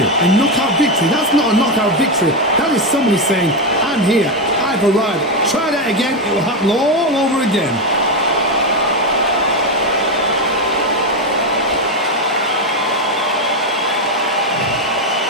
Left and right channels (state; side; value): normal; both; correlation 0.09